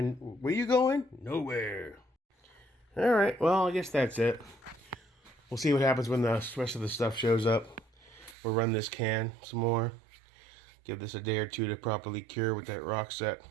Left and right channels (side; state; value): left; drops out; at 8.3 s